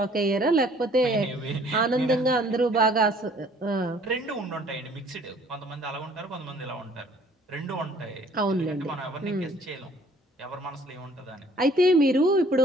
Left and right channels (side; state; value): both; normal; correlation 0.57